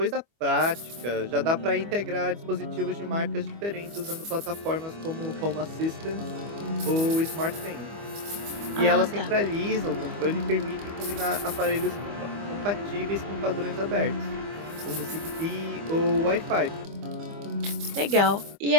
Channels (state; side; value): late; left; 25 ms